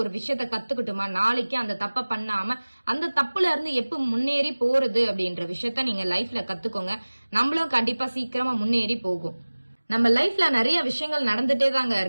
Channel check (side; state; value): both; inverted; correlation -1.00